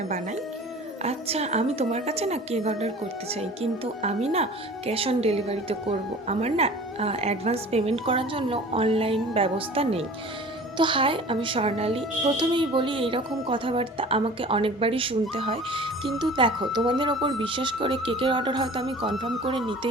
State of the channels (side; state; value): both; normal; correlation 0.43